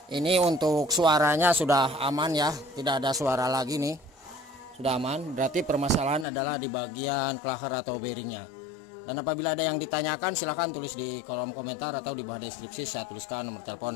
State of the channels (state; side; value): drops out; right; at 6.2 s